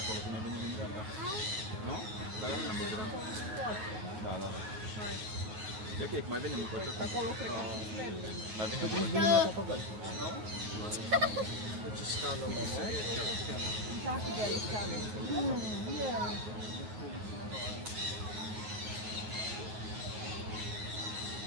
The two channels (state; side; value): late; left; 9.4 ms